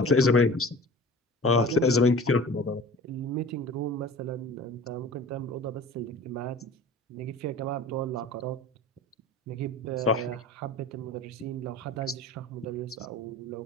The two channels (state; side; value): normal; both; correlation 0.40